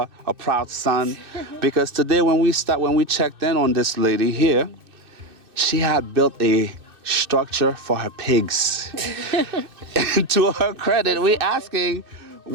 a proud son, because today when we checked in on this lady here, she had built a structure for her pigs. And to her credit, we asking,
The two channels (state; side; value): late; left; 2.6 ms